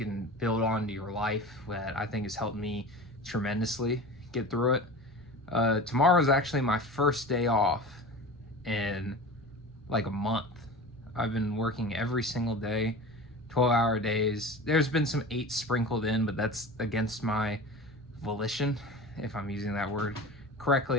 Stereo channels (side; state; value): both; normal; correlation 0.34